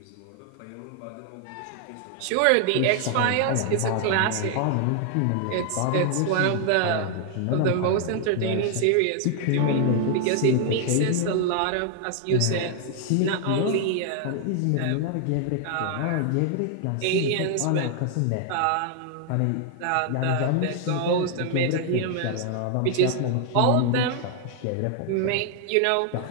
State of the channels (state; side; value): different; both; correlation 0.00